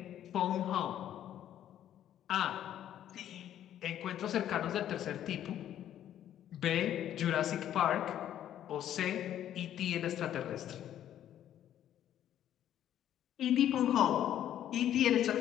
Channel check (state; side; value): quieter; right; 11.1 dB